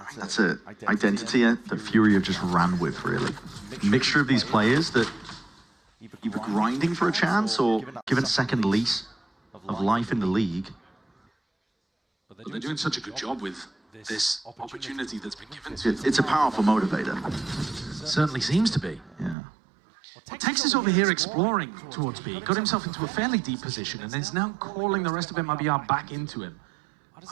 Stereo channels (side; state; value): left; drops out; at 19.4 s